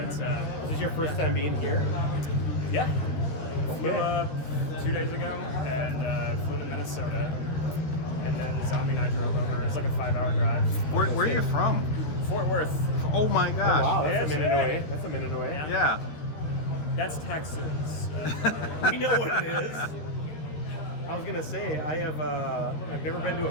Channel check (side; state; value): right; late; 13 ms